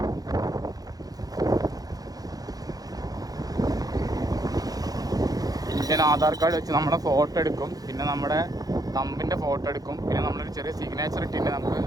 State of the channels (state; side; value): late; left; 0.18 ms